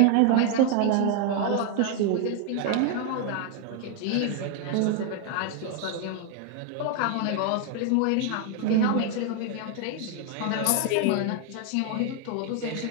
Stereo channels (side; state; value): both; different; correlation 0.00